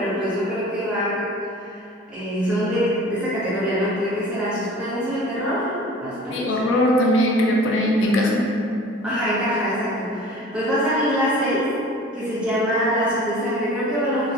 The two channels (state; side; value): normal; both; correlation 0.43